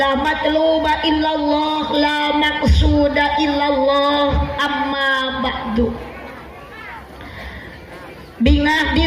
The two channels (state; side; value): identical; both; correlation 1.00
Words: matluba illallah la maqsuda illallah amma ba'du. Bingah